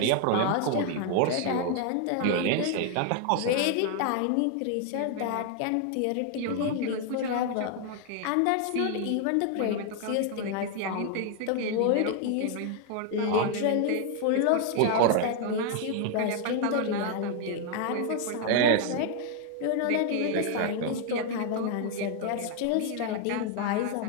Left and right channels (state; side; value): different; both; correlation 0.00